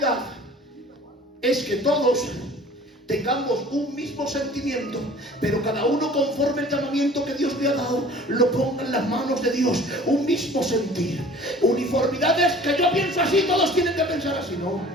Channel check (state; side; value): normal; both; correlation 0.47